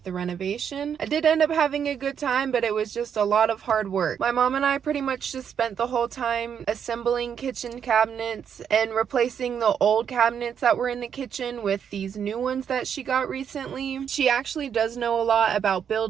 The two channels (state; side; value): quieter; left; 8.0 dB